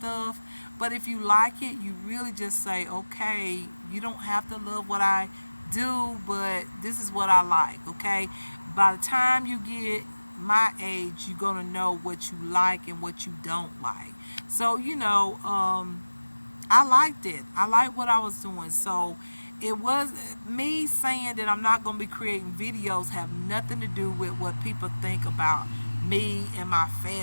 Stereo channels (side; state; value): both; inverted; correlation -1.00